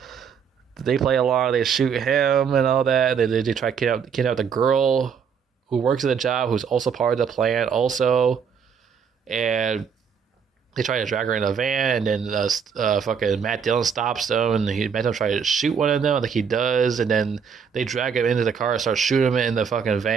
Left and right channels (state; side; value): quieter; left; 6.8 dB